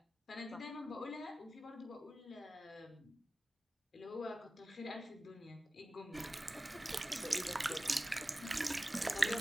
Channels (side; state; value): both; normal; correlation 0.96